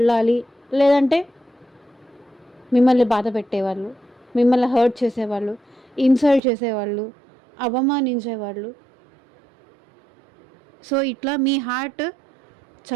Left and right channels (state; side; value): drops out; left; at 6.4 s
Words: లేదంటే మిమ్మల్ని బాధ పెట్టేవాళ్ళు, మిమ్మల్ని హర్ట్ చేసేవాళ్ళు, ఇన్సల్ట్ చేసేవాళ్ళు, అవమానించేవాళ్ళు. సో, ఇట్లా మీ హార్ట్